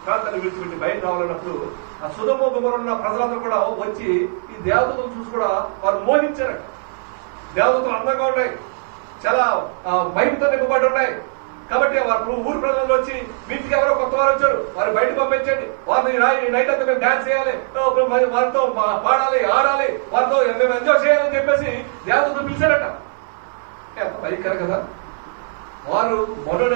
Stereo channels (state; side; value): silent; left; digital silence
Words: ప్రాంతాన్ని విడిచిపెట్టి బయట రావాలన్నప్పుడు ఆ సొదొమ గుమొర్రా ఉన్న ప్రజలందరూ కూడా వచ్చి ఈ దేవదూతలు చూసి కూడా వారు మోహించారు. దేవదూతలు అందంగా ఉన్నాయి, చాలా మహిమతో నింపబడి ఉన్నాయి. కాబట్టి వారు ఊరు ప్రజలు వచ్చి, వీటికి ఎవరో కొత్త వారు వచ్చారు, వారు బయట పంపించండి, వారిని నైట్ అంతా మేము డాన్స్ చేయాలి, వారితో పాడాలి, ఆడాలి, వారితో మేము ఎంజాయ్ చేయాలని చెప్పేసి దేవదూతలు పిలిచారట. ఎంత భయంకరం కదా. వారు